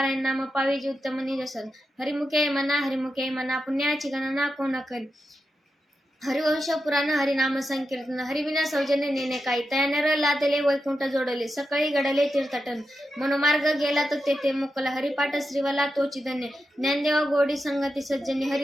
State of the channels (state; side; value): normal; both; correlation 0.89